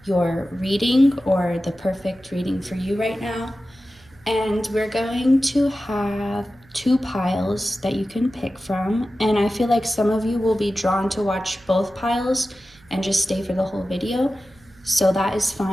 your reading or the perfect reading for you right now. And we're going to have two piles that you can pick from. And I feel like some of you will be drawn to watch both piles and just stay for the whole video. So that is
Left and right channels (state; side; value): noise; right; hum, 28 dB below the sound